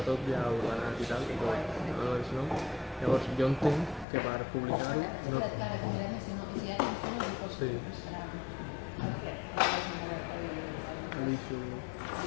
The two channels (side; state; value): right; drops out; at 4.0 s